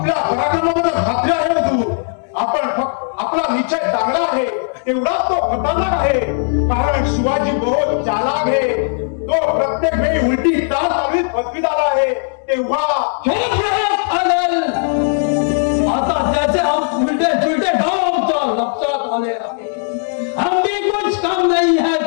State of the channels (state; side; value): silent; right; digital silence